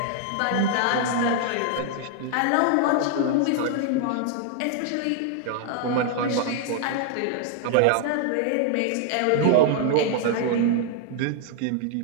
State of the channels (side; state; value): both; different; correlation 0.00